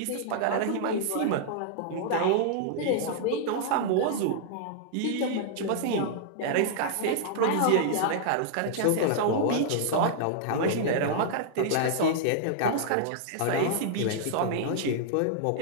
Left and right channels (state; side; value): different; both; correlation -0.01